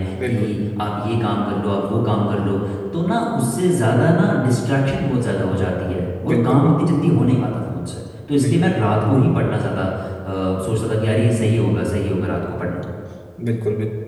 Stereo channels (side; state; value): both; identical; correlation 1.00